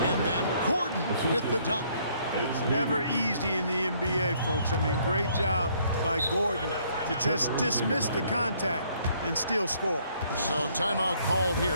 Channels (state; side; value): inverted; both; correlation -0.65